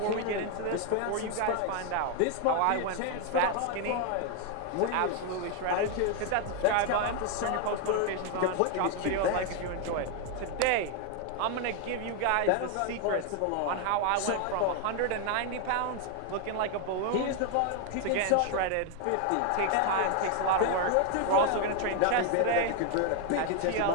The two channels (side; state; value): both; different; correlation 0.01